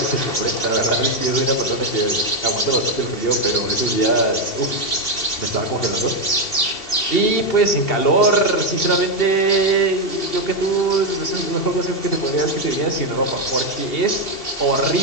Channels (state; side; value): late; right; 2.7 ms